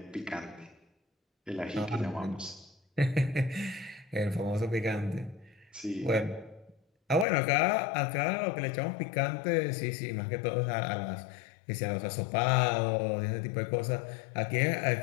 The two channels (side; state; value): right; drops out; at 7.2 s